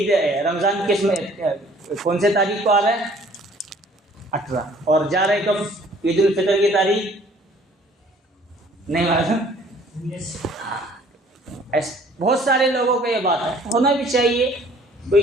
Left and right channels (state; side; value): normal; both; correlation 0.56